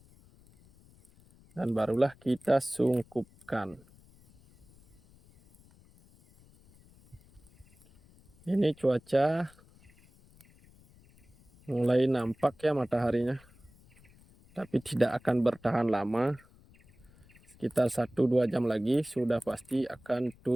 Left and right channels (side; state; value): left; noise; rumble, 27 dB below the sound